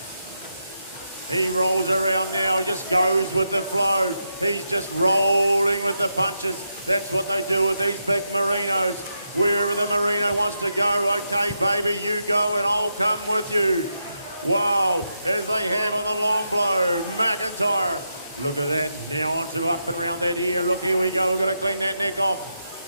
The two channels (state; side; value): inverted; both; correlation -0.85